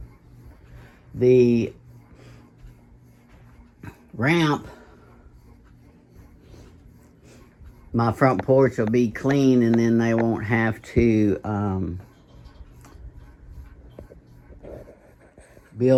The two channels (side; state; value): both; identical; correlation 1.00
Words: the ramp, my front porch will be clean, and then they won't have to